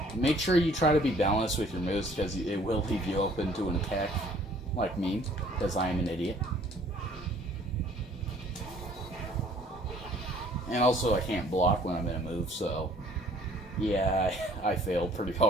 Make sure you try to be balanced with your moves, because it will leave you open to an attack, like me, because I am an idiot. And also, I can't block when I'm in a move, so... yeah, I failed pretty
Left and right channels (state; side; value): normal; both; correlation 0.57